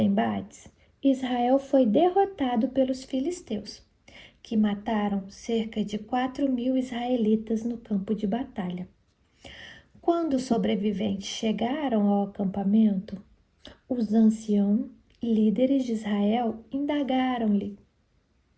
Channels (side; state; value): both; identical; correlation 1.00